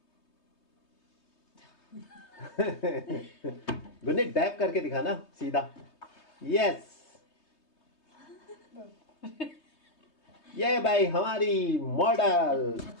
गुनीत डैप करके दिखाना सीधा। यस, ये भाई हमारी मॉडल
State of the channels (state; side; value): late; right; 3.2 ms